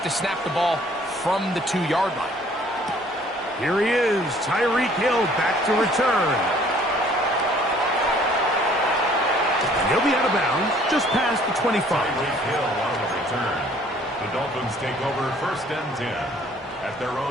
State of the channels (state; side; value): normal; both; correlation 0.57